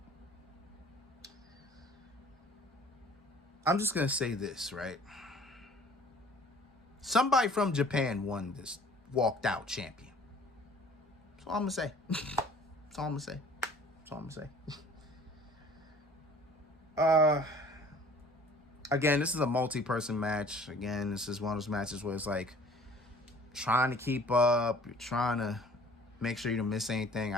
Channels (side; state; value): both; normal; correlation 0.51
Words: I'm just going to say this, right? Somebody from Japan won this walked out champion. That's all I'm going to say. That's all I'm going to say. That's all I'm going to say. Again, this is a multi-person match. Again, this is one of those matches where it's like trying to keep up. You're trying to make sure you don't miss anything.